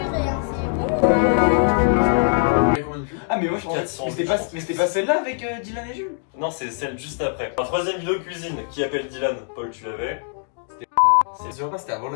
hein, c'est bon. Ah mais moi je pensais. 400, Mais c'était pas celle-là avec Dylan et Jules. Non, c'est celle juste après. La troisième vidéo cuisine qui appelle Dylan. Paul, tu l'avais. C'est sûr pas, c'était avant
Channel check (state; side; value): silent; right; digital silence